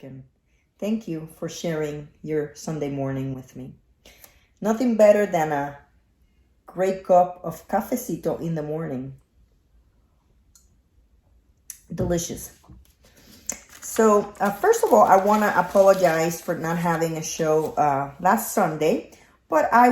Thank you for sharing your Sunday morning with me. Nothing better than a great cup of cafecito in the morning. Delicious. So, first of all, I want to apologize for not having a show last Sunday, but I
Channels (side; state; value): both; identical; correlation 1.00